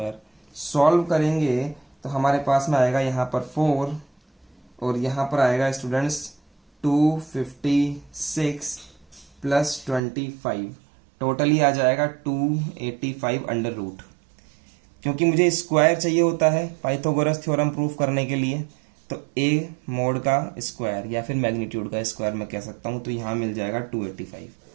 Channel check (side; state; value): left; drops out; at 10.0 s